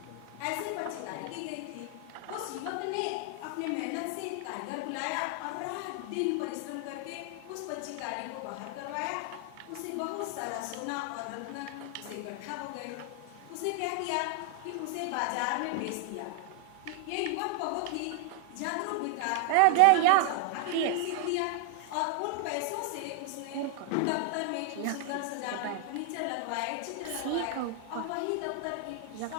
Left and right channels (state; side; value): different; both; correlation 0.00